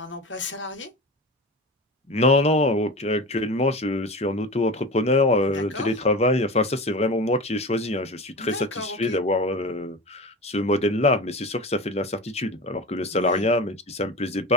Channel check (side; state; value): both; normal; correlation 0.30